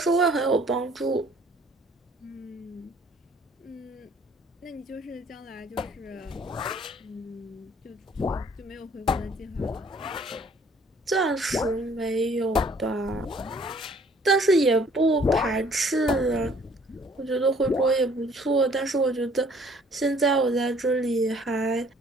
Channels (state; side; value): normal; both; correlation 0.58